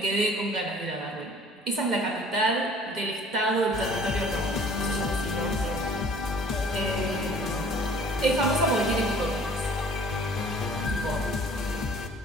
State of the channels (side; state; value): both; normal; correlation 0.51